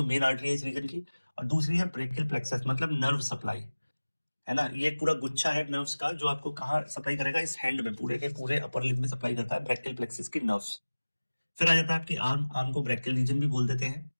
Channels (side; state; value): both; inverted; correlation -1.00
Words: मेन आर्टरी है इस रीजन की, और दूसरी है ब्रेकियल प्लेक्सस, मतलब नर्व सप्लाई, है ना। ये पूरा गुच्छा है नर्व्स का जो आपको कहाँ सप्लाई करेगा? इस हैंड में, पूरे के पूरे अपर लिम्ब में सप्लाई करता है ब्रेकियल प्लेक्सस की नर्व्स। फिर आ जाता है आपकी आर्म। आर्म को ब्रेकियल रीजन भी बोल देते हैं।